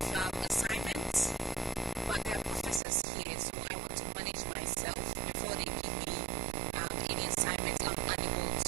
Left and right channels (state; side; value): drops out; left; at 2.8 s